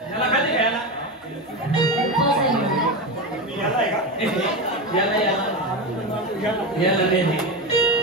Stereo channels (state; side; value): normal; both; correlation 0.16